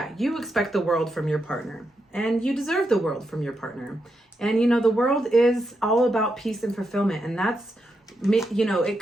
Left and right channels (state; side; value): normal; both; correlation 0.84